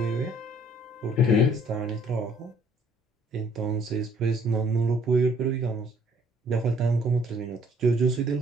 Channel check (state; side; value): normal; both; correlation 0.61